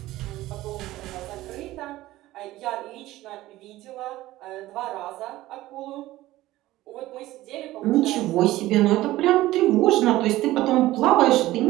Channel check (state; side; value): quieter; left; 16.5 dB